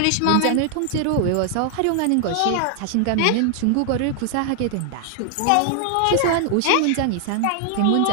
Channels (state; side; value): different; both; correlation 0.00